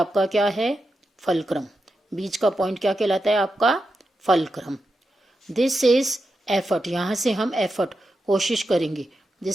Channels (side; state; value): both; normal; correlation 0.88